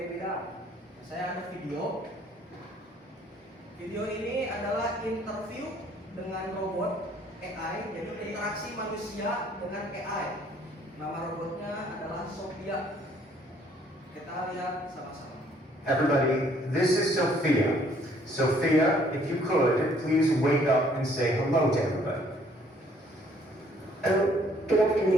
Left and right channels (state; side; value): normal; both; correlation 0.62